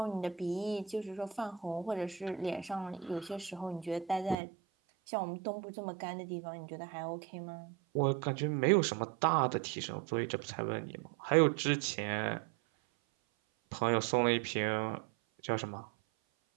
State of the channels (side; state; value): left; drops out; at 4.4 s